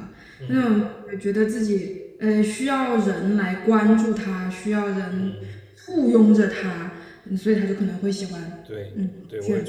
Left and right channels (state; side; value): identical; both; correlation 1.00